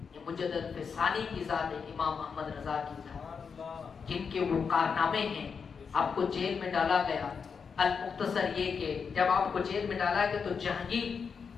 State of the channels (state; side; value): quieter; right; 5.9 dB